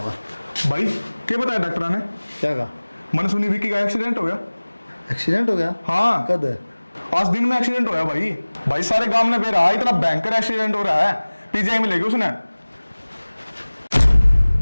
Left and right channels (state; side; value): inverted; both; correlation -1.00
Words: भाई क्या बताया डॉक्टर ने? क्या कहा? मैंने सुनी विक्की का एक्सीडेंट हो गया। एक्सीडेंट हो गया? हाँ, कद है? आज दिन में एक्सीडेंट होया भाई। भाई सारे गांव ने पे रहा, इतना भयंकर एक्सीडेंट हो रहा है। पीजीआई में लेके उसने।